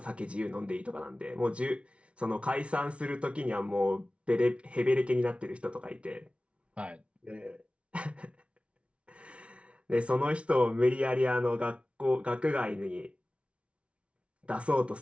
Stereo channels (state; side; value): late; left; 0.061 ms